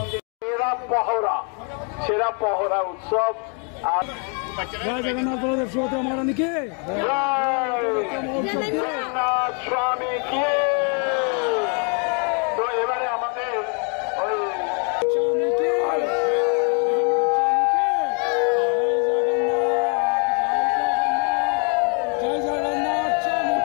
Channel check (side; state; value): right; quieter; 38.5 dB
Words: সেরা পহরা উৎসব। আর জগন্নাথ বলদেব সুভদ্রা মহারানী কে, জগন্নাথ স্বামী কে। তো এবারে আমাদের ওই